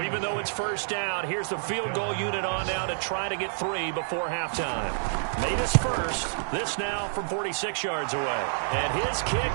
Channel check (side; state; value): left; silent; 59 dB below the other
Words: even though it's 1st down, here's the field goal unit on now to try to get 3 before halftime. Made his first. This now from 46 yards away. And his kick